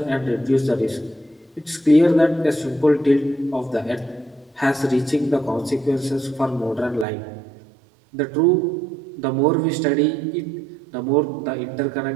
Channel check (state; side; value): drops out; left; at 7.1 s